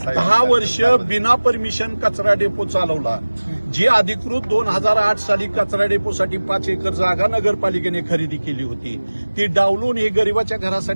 10 वर्ष बिना परमिशन कचरा डेपो चालवला, जी अधिकृत 2008 साली कचरा डेपोसाठी 5 एकर जागा नगरपालिकेने खरेदी केली होती, ती डावलून हे गरिबाच्या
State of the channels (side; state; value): both; inverted; correlation -1.00